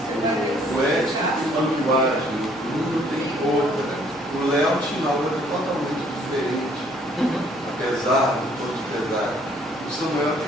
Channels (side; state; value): both; normal; correlation 0.62